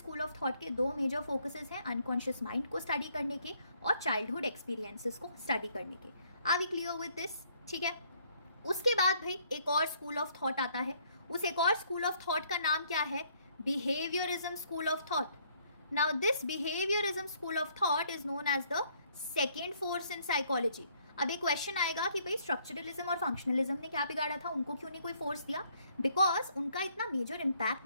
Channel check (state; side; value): inverted; both; correlation -0.66